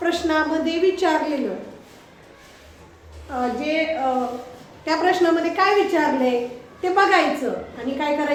विचारलेलं त्या प्रश्नामध्ये काय विचारले ते बघायचं आणि काय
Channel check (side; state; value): both; identical; correlation 1.00